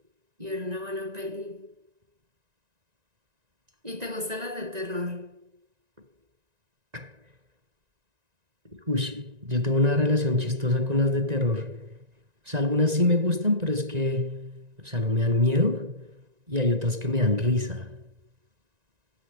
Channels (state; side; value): late; left; 1.9 ms